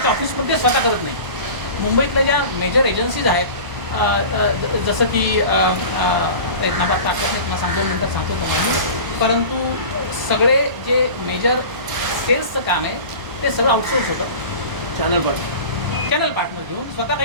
ऑफिसमध्ये स्वतः करत नाही. मुंबईतल्या ज्या मेजर एजन्सीज आहेत, जसं की एक नावात ताकद नाही, मला 2 मिनटात सांगतो तुम्हाला, परंतु सगळे जे मेजर सेल्सचं काम आहे ते सगळं आउटसोर्स होतं. चॅनल पार्टनर घेऊन स्वतः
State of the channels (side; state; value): left; late; 1.0 ms